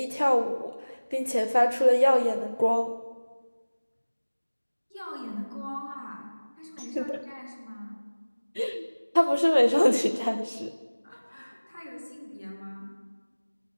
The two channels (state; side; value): inverted; both; correlation -1.00